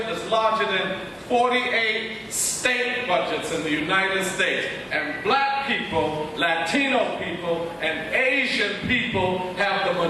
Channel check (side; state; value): both; identical; correlation 1.00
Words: is larger than 48 state budgets in the United States. And black people, Latino people, and Asian people have the